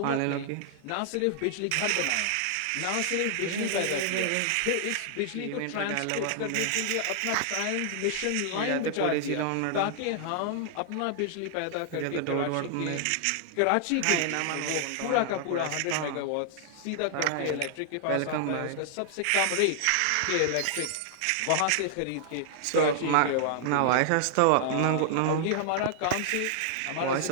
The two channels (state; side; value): different; both; correlation -0.01